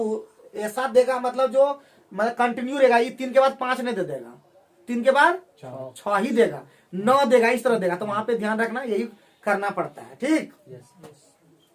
ऐसा देगा मतलब जो मतलब कंटिन्यू रहेगा। ये 3 के बाद 5 नहीं दे देगा, 3 के बाद 6 ही देगा, 9 देगा, इस तरह देगा। तो वहां पे ध्यान रखना, यही करना पड़ता है, ठीक? यस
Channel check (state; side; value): identical; both; correlation 1.00